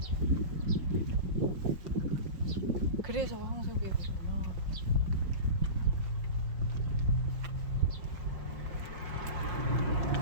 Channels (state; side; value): late; left; 5.5 ms